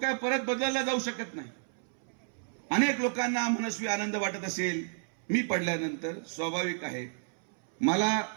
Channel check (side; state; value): left; silent; 57 dB below the other